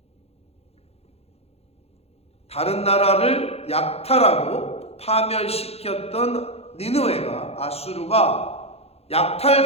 다른 나라를 약탈하고 파멸시켰던 니느웨가, 아수르가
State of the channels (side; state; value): right; late; 0.29 ms